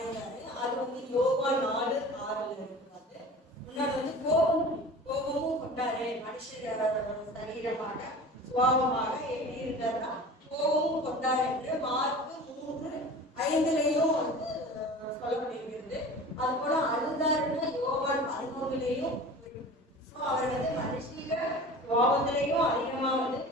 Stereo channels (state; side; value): normal; both; correlation 0.38